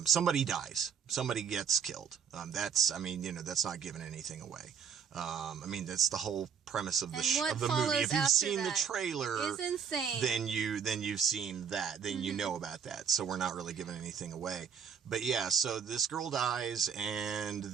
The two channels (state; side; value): quieter; left; 7.2 dB